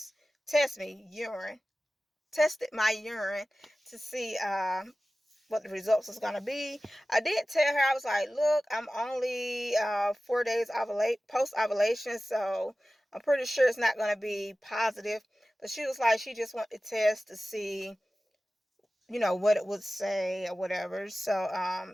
me urine. Tested my urine to see what the results was going to be. I did tell her, I was like, look, I'm only 4 days post ovulation, so I'm pretty sure it's not going to be positive. But she was like, she just wanted to test to see, what it would say or whatever. So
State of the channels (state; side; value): normal; both; correlation 0.96